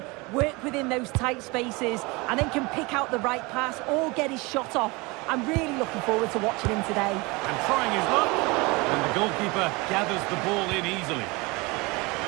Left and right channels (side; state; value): left; quieter; 25.4 dB